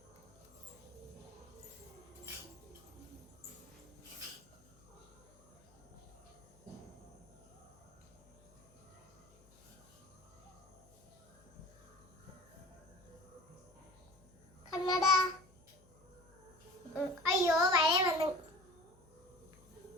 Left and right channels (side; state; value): left; noise; hum, 27 dB below the sound